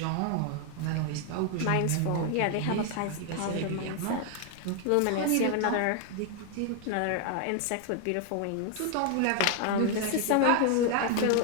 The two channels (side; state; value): both; different; correlation 0.00